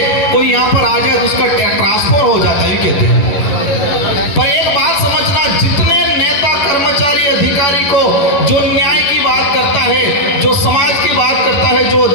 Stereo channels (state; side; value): late; right; 11 ms